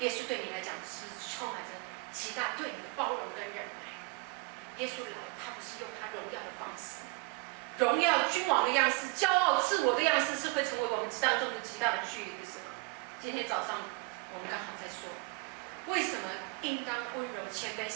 耶稣对你来讲是不是充满着极大对你的包容跟忍耐？耶稣来，他不是用他荣耀的方式，荣耀君王的样式，骄傲自我的样式，是会成为我们当中的极大的距离，不是吗？今天早上我们刚好在说，为什么应当温柔谦卑，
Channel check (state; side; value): quieter; left; 28.7 dB